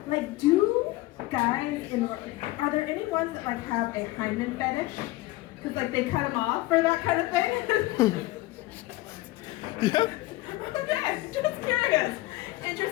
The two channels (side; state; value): right; quieter; 18.9 dB